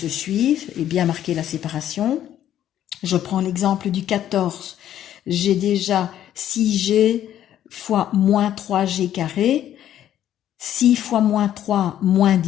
suivent et bien marquer la séparation. Je prends l'exemple du 14. J'ai déjà 6g fois moins 3g carré. 6 fois moins 3, moins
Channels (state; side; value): quieter; right; 11.4 dB